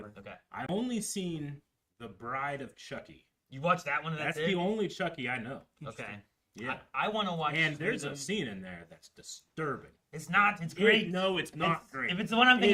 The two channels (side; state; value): both; identical; correlation 1.00